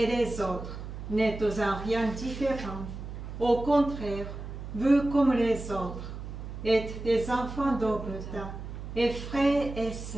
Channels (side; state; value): right; noise; hum, 9 dB below the sound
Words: les autres n'êtes en rien différents. Au contraire, vous comme les autres êtes des enfants d'Obota et frères et